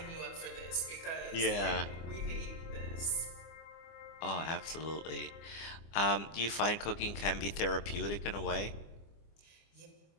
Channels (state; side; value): late; right; 24 ms